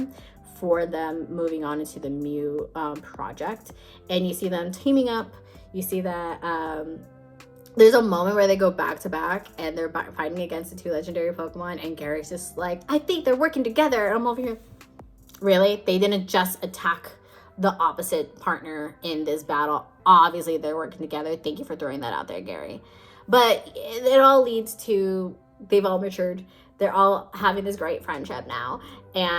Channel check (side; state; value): both; identical; correlation 1.00